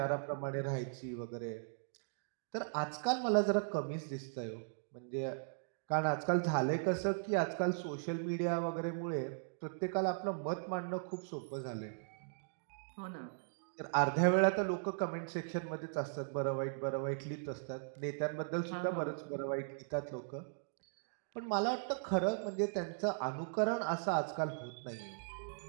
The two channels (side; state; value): left; silent; digital silence